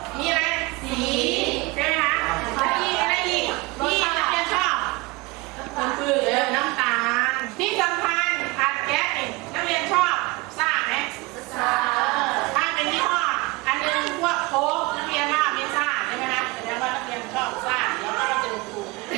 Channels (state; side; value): quieter; left; 24.0 dB